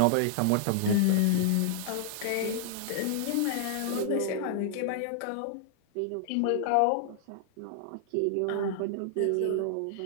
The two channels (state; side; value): different; both; correlation -0.01